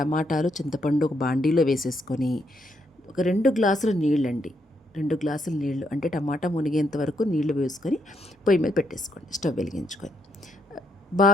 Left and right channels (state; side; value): normal; both; correlation 0.76